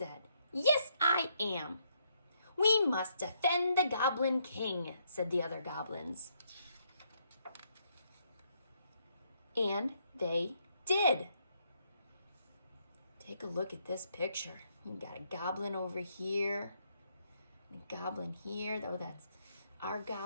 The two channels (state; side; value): inverted; both; correlation -0.74